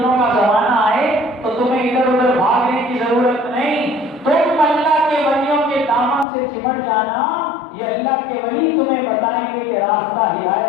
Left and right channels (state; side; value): drops out; right; at 6.2 s